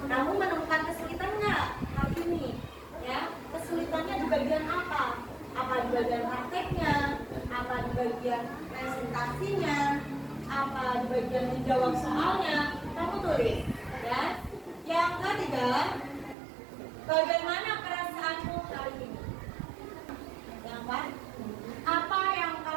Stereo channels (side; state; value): left; drops out; at 16.4 s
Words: Kamu menemukan kesulitan nggak hari ini? Ya, kesulitannya di bagian apa? Apa di bagian prakteknya? Apa di bagian presentasinya? Apa di bagian menjawab soalnya? Kamu tulis, ya. Yang ketiga, bagaimana perasaanmu hari ini? Yang keempat, apa yang